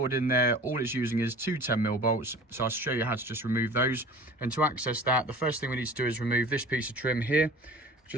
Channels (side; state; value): both; normal; correlation 0.43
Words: in there. All it's using is two 10mm bolts. So I'll show you how to just remove those. And to access that, the first thing we need to do is remove this piece of trim here.